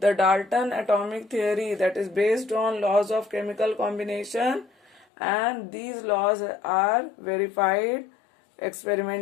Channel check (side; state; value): right; drops out; at 5.1 s